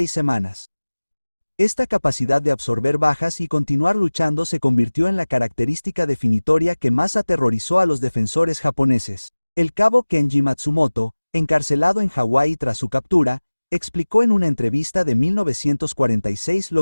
semanas. Esta capacidad de absorber bajas y continuar luchando se convirtió en la característica definitoria que más aterrorizó a los defensores japoneses. El cabo Kenji Matsumoto, encarcelado en Hawái tras su captura, explicó en una entrevista de 1946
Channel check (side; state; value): both; inverted; correlation -1.00